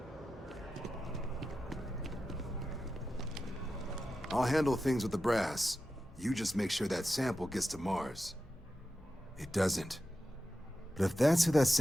I'll handle things with the brass. You just make sure that sample gets to Mars. It doesn't. But if that's who that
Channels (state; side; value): normal; both; correlation 0.91